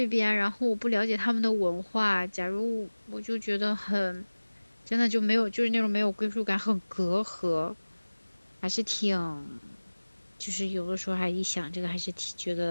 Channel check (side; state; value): both; inverted; correlation -1.00